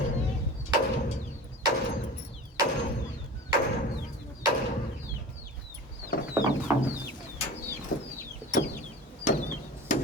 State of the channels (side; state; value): both; normal; correlation 0.35